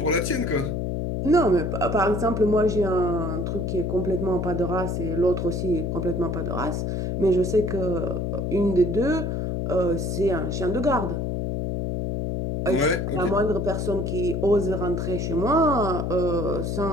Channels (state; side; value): noise; left; hum, 1 dB below the sound